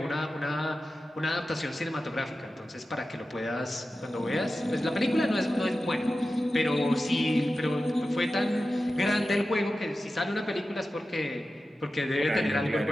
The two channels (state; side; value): normal; both; correlation 0.93